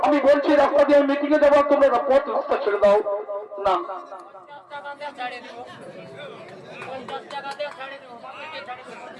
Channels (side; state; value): both; identical; correlation 1.00